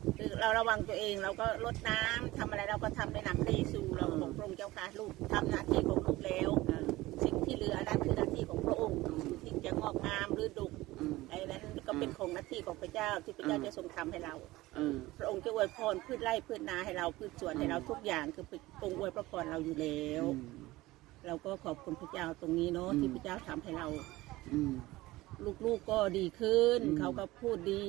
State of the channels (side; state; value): left; quieter; 18.7 dB